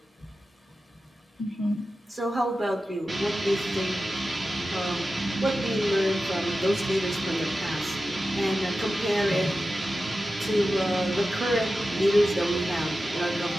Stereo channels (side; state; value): both; normal; correlation 0.93